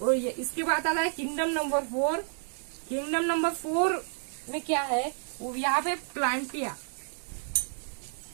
ये इसके बाद आता है किंगडम नंबर 4। किंगडम नंबर 4 में क्या है, वो यहाँ पे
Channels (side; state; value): left; silent; digital silence